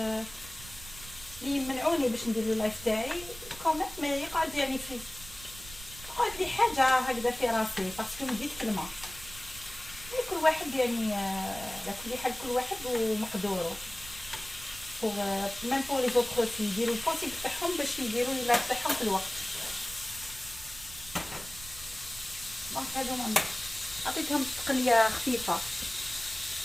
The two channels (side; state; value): right; noise; rumble, 16 dB below the sound